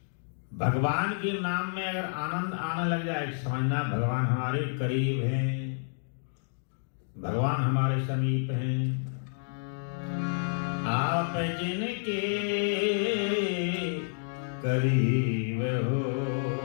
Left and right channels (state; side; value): silent; right; digital silence